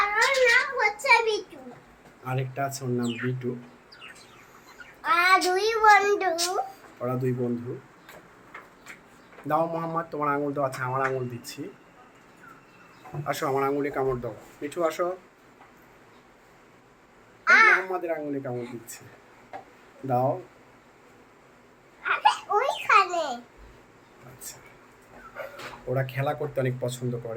আরেকটা আছে ওর নাম বিটু। ওরা দুই বন্ধু। দাও মোহাম্মদ, তোমার আঙুল তো আছে, আমার আঙুল দিচ্ছি। আসো আমার আঙুলে কামড় দাও। মিঠু আসো। মোহাম্মদের আঙুলে কামড় দিচ্ছে। দাও। আচ্ছা, ওরা খেলা করতে অনেক পছন্দ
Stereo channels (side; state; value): both; identical; correlation 1.00